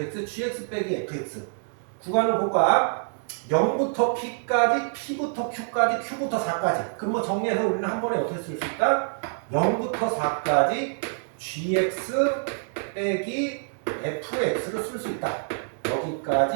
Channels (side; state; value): left; silent; digital silence